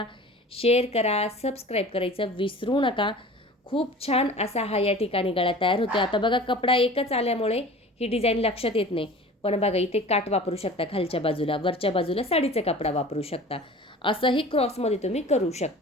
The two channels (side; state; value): both; normal; correlation 0.41